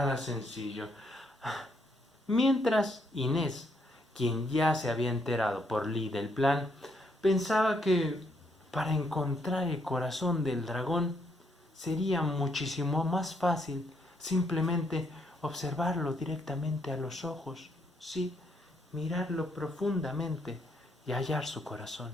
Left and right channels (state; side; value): normal; both; correlation 0.74